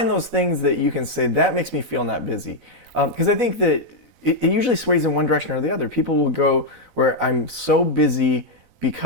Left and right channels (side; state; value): right; late; 4.0 ms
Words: those things that you can say, that makes me feel not busy. Because I think that it usually sways in one direction or the other. People will go where I'm so busy